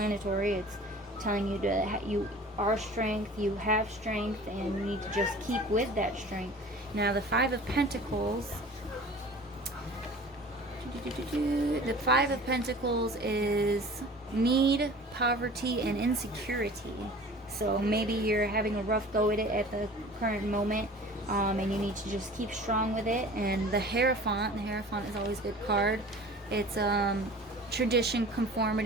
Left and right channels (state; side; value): normal; both; correlation 0.43